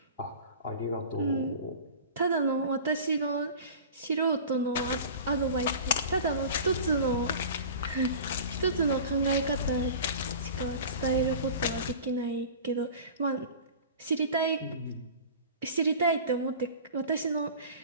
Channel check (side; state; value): both; inverted; correlation -0.37